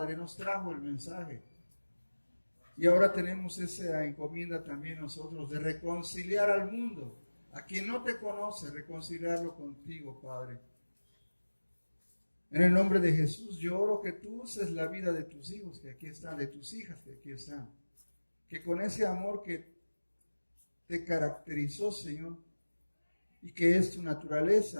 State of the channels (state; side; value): inverted; both; correlation -1.00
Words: nos trajo el mensaje. Y ahora tenemos esa encomienda también nosotros de reconciliar al mundo, a quien no te conoce, reconciliarlo contigo, Padre. En el nombre de Jesús, yo oro que tú uses la vida de tus hijos que aquí están, de tus hijas que aquí están. Que con ese amor que te caracterizó, Señor, y que es tu